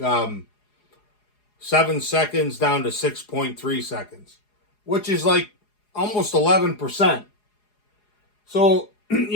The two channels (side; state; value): right; late; 4.8 ms